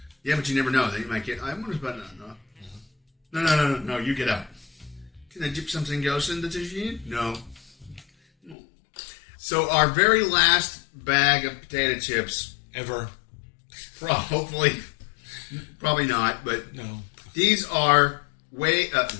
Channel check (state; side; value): drops out; right; at 8.6 s